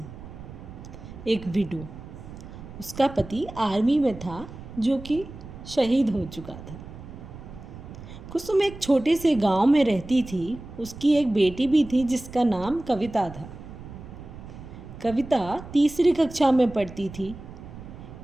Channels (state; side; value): noise; right; rumble, 14 dB below the sound